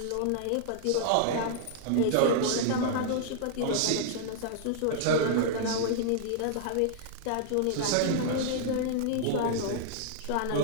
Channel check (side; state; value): both; different; correlation -0.01